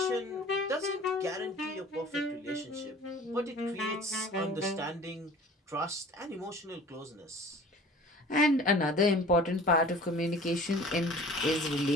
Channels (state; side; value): normal; both; correlation 0.45